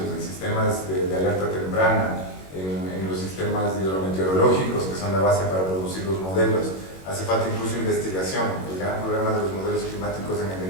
en sistemas de alerta temprana, en los sistemas hidrometeorológicos, que son la base para producir los modelos, hace falta incluso investigación. El gran problema de los modelos climáticos en el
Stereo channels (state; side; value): late; right; 21 ms